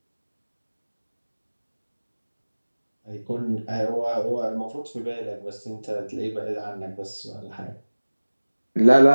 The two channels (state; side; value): inverted; both; correlation -1.00